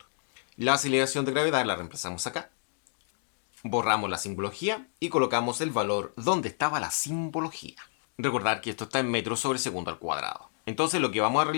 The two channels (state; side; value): silent; right; digital silence